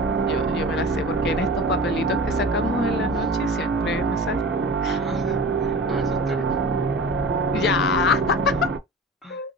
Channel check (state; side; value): normal; both; correlation 0.35